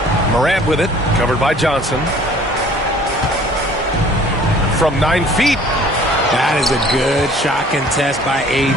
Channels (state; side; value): normal; both; correlation 0.52